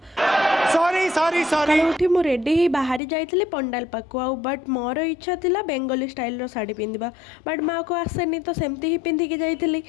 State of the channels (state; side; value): drops out; right; at 3.0 s